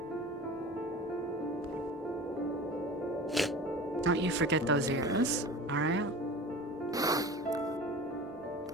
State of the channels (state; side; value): normal; both; correlation 0.36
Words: Don't you forget those ears, alright?